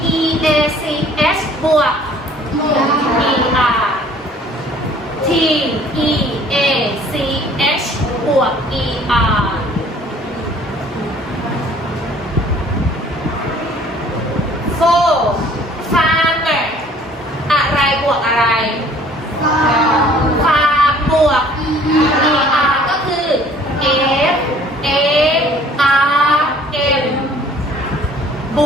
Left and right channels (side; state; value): both; normal; correlation 0.55